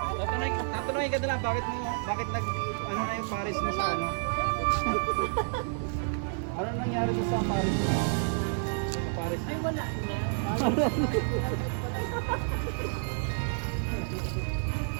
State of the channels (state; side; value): silent; left; digital silence